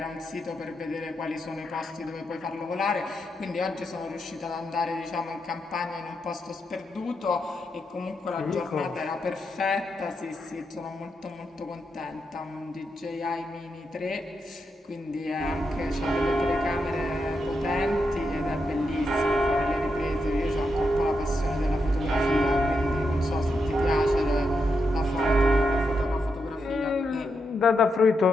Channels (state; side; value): normal; both; correlation 0.84